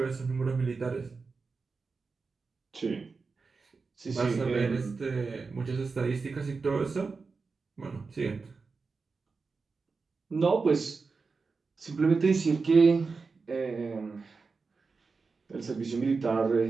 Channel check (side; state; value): left; quieter; 4.5 dB